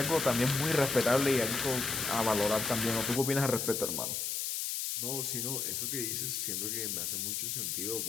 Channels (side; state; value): left; noise; hiss, 1 dB below the sound